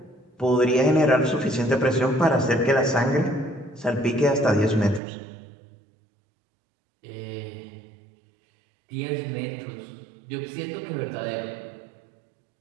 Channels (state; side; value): drops out; left; at 5.0 s